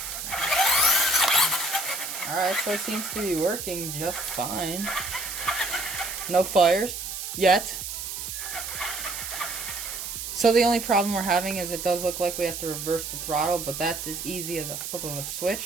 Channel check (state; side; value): noise; right; hiss, 6 dB below the sound